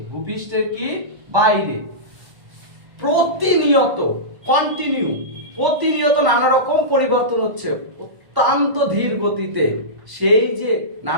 বাইরে প্রতিনিয়ত নানা রকম পরিবর্তন হচ্ছে অত্যন্ত ধীর গতিতে, সেই যে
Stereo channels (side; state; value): left; late; 1.1 ms